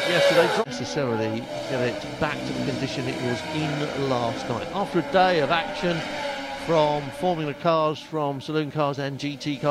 yesterday. Not necessarily get it back to the condition it was in last night. After a day of action from Formula cars, from saloon cars and GT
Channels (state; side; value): identical; both; correlation 1.00